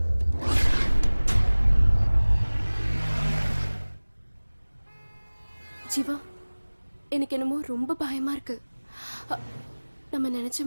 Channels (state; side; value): inverted; both; correlation -1.00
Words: ஜீவா, எனக்கு என்னமோ ரொம்ப பயமா இருக்கு. நம்ம நினைச்ச